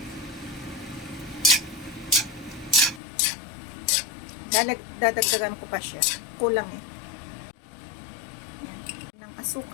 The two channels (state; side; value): drops out; right; at 3.0 s